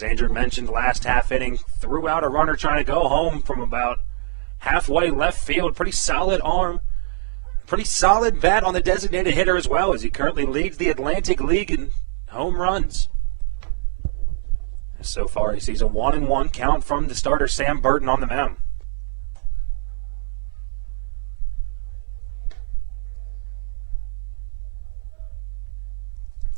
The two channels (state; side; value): silent; left; digital silence